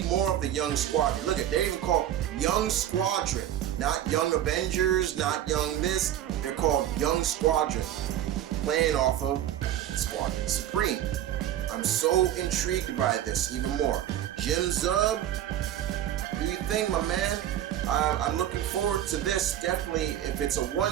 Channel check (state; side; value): quieter; left; 11.6 dB